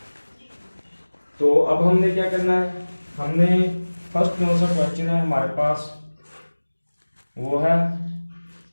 तो अब हमने क्या करना है, हमने फर्स्ट कौन सा क्वेश्चन है हमारे पास, वो है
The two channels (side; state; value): both; inverted; correlation -1.00